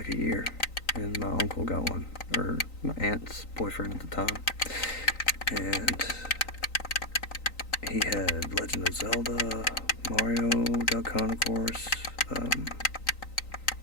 a year. And my uncle got one, or my aunt's boyfriend at the time. And he had Legend of Zelda, Mario, Duck Hunt, of course.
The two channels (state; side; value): late; right; 3.9 ms